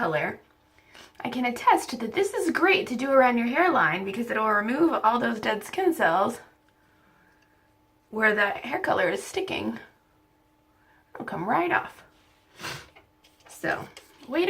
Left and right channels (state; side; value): identical; both; correlation 1.00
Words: I can attest that this is great to do around your hairline because it'll remove all those dead skin cells where that hair color is sticking. It'll come right off. So, wait